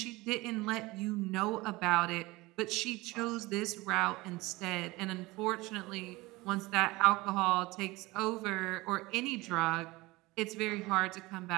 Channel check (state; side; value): quieter; left; 21.3 dB